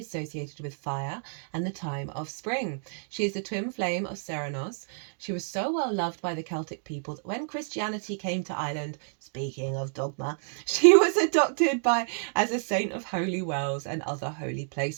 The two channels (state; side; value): silent; left; digital silence